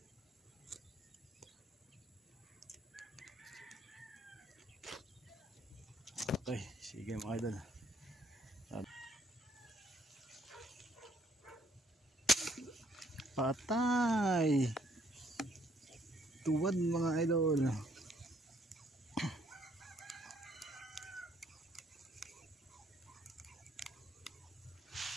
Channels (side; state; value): both; normal; correlation 0.66